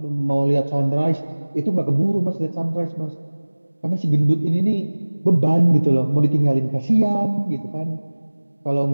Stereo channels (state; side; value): inverted; both; correlation -1.00